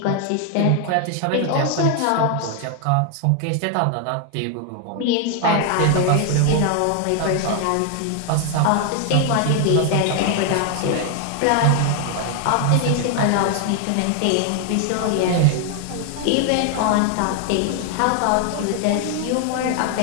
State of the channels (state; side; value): different; both; correlation 0.00